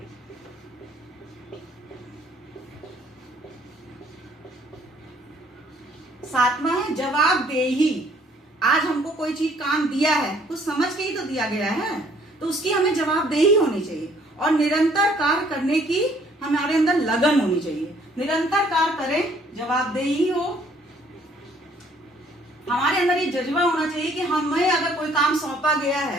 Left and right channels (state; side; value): normal; both; correlation 0.61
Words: 7वां है जवाबदेही। आज हमको कोई चीज काम दिया है, कुछ समझ के ही तो दिया गया है, तो उसकी हमें जवाबदेही होनी चाहिए। और निरंतर कार्य करने की हमारे अंदर लगन होनी चाहिए। निरंतर कार्य करें, जवाबदेही हो, हमारे अंदर ये जज्बा होना चाहिए कि हमें अगर कोई काम सौंपा गया